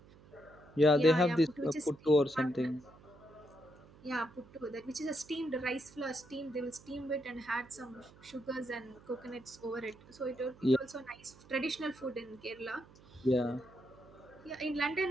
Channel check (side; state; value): right; noise; hum, 23 dB below the sound